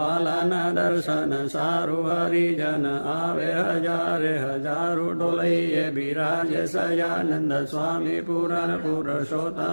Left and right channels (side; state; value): both; inverted; correlation -1.00